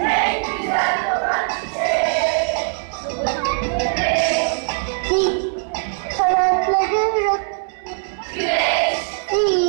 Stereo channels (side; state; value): left; silent; 62 dB below the other